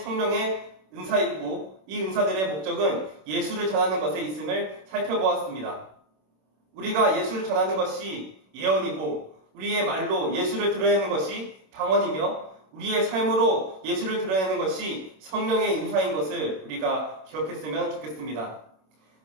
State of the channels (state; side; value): late; left; 26 ms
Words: 은사이고 이 은사들의 목적은 예수를 전하는 것에 있음을 살펴보았습니다. 우리가 예수를 전하는 것이 예언이고 우리의 말로 예수를 드러내는 것이 방언이며 우리의 삶으로 예수를 드러내는 것이 성령의 인사인 것을 우리가 기억했으면 좋겠습니다.